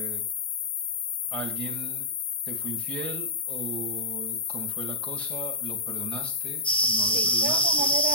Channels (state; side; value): normal; both; correlation -0.13